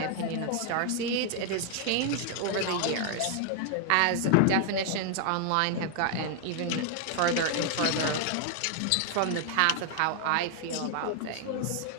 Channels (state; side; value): different; both; correlation 0.00